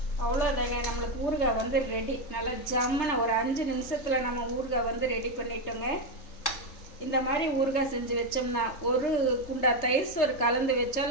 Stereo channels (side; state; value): right; late; 3.3 ms